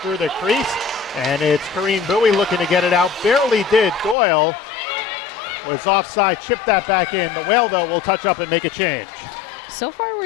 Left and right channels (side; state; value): right; drops out; at 4.2 s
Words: through the crease, and it's Corinne Bowie looking to get it out. Barely did. Doyle was offside, chipped that back in. The Whale, though, will touch up and make a change. So far,